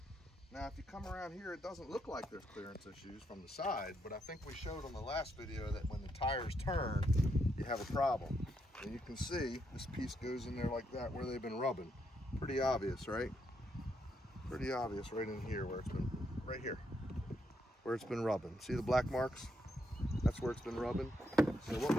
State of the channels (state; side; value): normal; both; correlation 0.78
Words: Now, if you come around here, it doesn't look like there's clearance issues from the side, but I think we showed on the last video that when the tires turn, you have a problem. And you can see this piece goes in there like that where they've been rubbing. Pretty obvious, right? Pretty obvious right in here where it's been, right here, where it's been rubbing. See the black marks? That's where it's been rubbing. So what